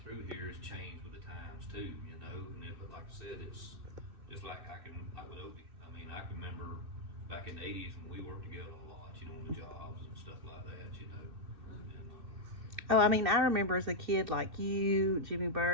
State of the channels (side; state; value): left; late; 2.6 ms